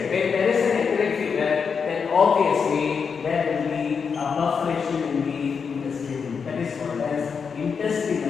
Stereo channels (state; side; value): quieter; right; 6.0 dB